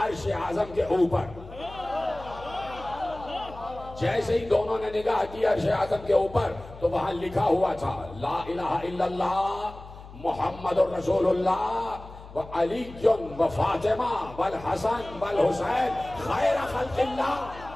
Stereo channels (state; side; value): noise; left; hum, 16 dB below the sound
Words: आजम के ऊपर। जैसे ही दोनों ने निगाह की अर्श आजम के ऊपर तो वहां लिखा हुआ था ला इलाहा इल्लल्लाह मुहम्मदुर रसूलुल्लाह व अली व फातिमा वल हसन वल हुसैन खैर खल्किल्लाह,